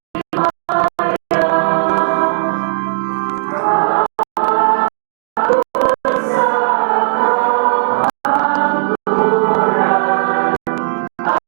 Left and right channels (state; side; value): silent; left; digital silence